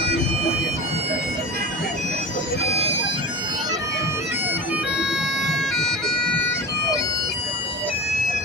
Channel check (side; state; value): both; normal; correlation 0.31